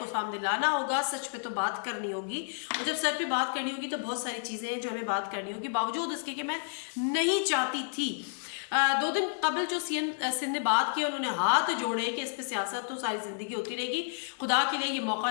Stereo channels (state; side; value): silent; right; digital silence